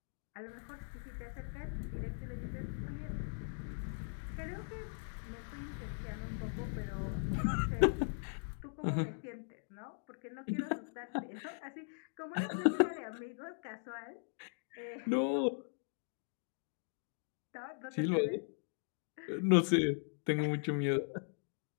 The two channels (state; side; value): silent; right; digital silence